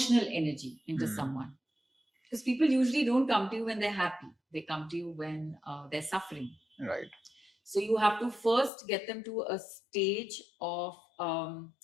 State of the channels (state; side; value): drops out; right; at 8.7 s